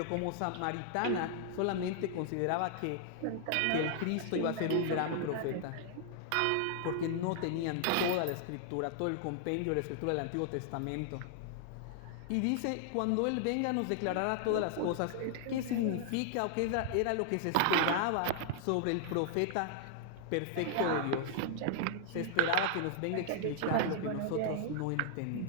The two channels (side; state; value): both; different; correlation 0.00